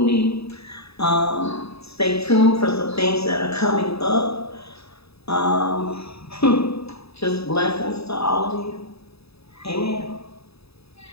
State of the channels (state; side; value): late; right; 0.78 ms